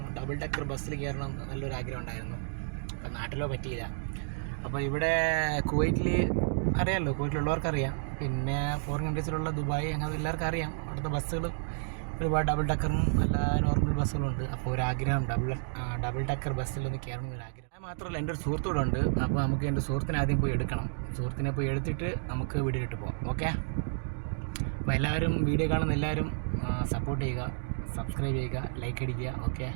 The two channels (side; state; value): left; silent; digital silence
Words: ഡബിൾ ഡെക്കർ ബസ്സിൽ കയറണം നല്ലൊരു ആഗ്രഹം ഉണ്ടായിരുന്നു. അപ്പോൾ നാട്ടിലോ പറ്റിയില്ല. അപ്പോൾ ഇവിടെ കുവൈറ്റിൽ അറിയാമല്ലോ, കുവൈറ്റിലുള്ളവർക്കറിയാം, പിന്നെ ഫോറിൻ കൺട്രീസിലുള്ള ദുബായ് അങ്ങനെ എല്ലാവർക്കും അറിയാം. അവിടുത്തെ ബസ്സുകൾ ഒരുപാട് ഡബിൾ ഡെക്കറും അല്ല നോർമൽ ബസ്സുകളുണ്ട്. അപ്പോൾ ഒരാഗ്രഹം ഡബിൾ ഡെക്കർ ബസ്സിലൊന്ന് കയറണം എന്നൊരാഗ്രഹം. അത് മാത്രമല്ല, എൻ്റെ ഒരു സുഹൃത്തൂടെ ഉണ്ട്. അപ്പോൾ നമുക്ക് എൻ്റെ സുഹൃത്തിനെ ആദ്യം പോയി എടുക്കണം. സുഹൃത്തിനെ പോയി എടുത്തിട്ട് നമുക്ക് വീഡിയോയിലിട്ട് പോകാം. ഓക്കെ, അപ്പോൾ എല്ലാവരും വീഡിയോ കാണുന്ന എല്ലാവരും സപ്പോർട്ട് ചെയ്യുക, സബ്സ്ക്രൈബ് ചെയ്യുക, ലൈക്ക് അടിക്കുക. ഓക്കെ,